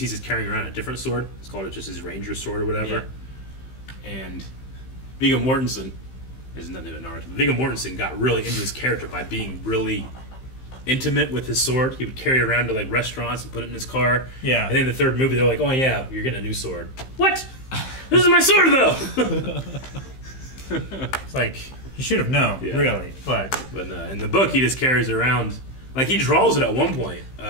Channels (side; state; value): right; late; 15 ms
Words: just carrying around a different sword. It's called just his ranger sword or whatever. Yeah. And Viggo Mortensen is nothing but Naruto. Viggo Mortensen got really into his character by being really intimate with his sword. He would carry it around to like restaurants and put it in his car. Yeah. And then in the third movie, they're like, "Oh yeah, you're getting a new sword." What? This is my sword though. It's like you should have known, really. But in the book, he just carries it around. Like he draws it at one point